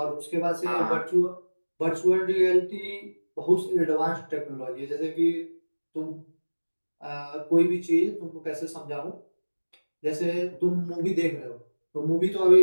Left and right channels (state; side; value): inverted; both; correlation -1.00